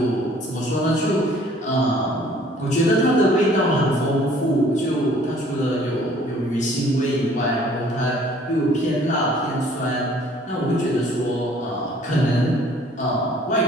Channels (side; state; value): both; normal; correlation 0.56